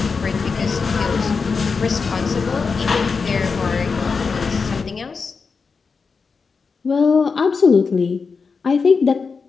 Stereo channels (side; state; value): right; quieter; 5.0 dB